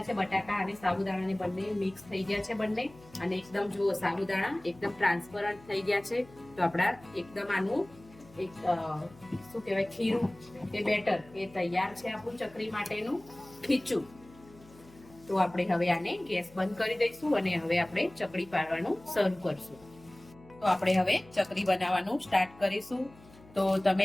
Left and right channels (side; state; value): left; noise; hum, 24 dB below the sound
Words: છે। બટાકા અને સાબુદાણાને બંને મિક્સ થઈ ગયા છે બંને। અને એકદમ જો સાબુદાણા એકદમ ટ્રાન્સપરન્ટ થઈ ગયા છે। તો આપણા એકદમ આનું એક શું કહેવાય ખીરું કે બેટર એ તૈયાર છે આપણું ચકરી માટેનું ખીચું। તો આપણે હવે આને ગેસ બંધ કરી દઈશું અને હવે આપણે ચકરી પાડવાનું શરૂ કરશું। તો આપણે હવે ચકરી બનાવવાનું સ્ટાર્ટ કરીશું। તો તમે